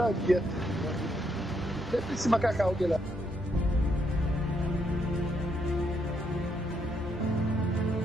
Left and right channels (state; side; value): normal; both; correlation 0.76